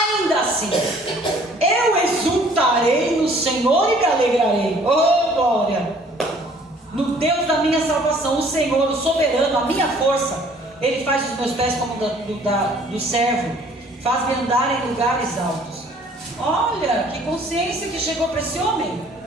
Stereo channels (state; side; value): normal; both; correlation 0.56